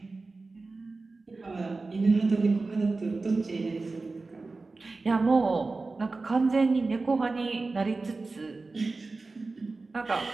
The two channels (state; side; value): quieter; left; 3.7 dB